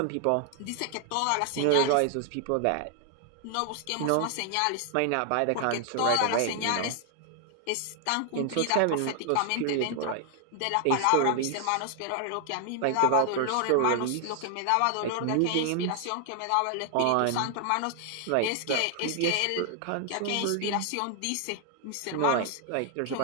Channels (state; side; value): different; both; correlation 0.00